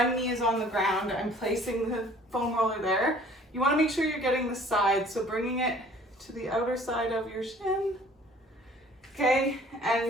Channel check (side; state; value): both; normal; correlation 0.52